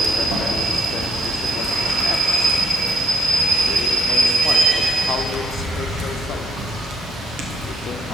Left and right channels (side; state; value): both; normal; correlation 0.73